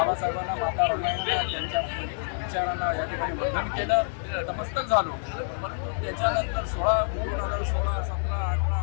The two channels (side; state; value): right; silent; 60 dB below the other